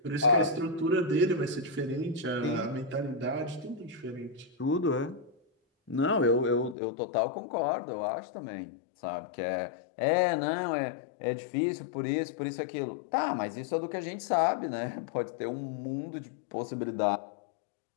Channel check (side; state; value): right; drops out; at 6.8 s